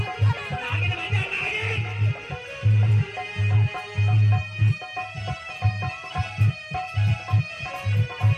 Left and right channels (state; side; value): identical; both; correlation 1.00